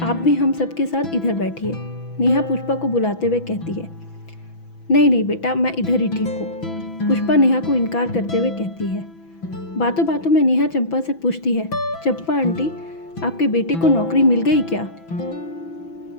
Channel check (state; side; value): late; right; 6.0 ms